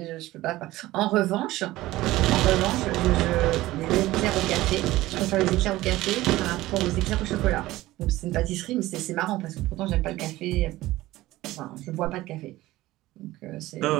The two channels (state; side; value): quieter; left; 17.2 dB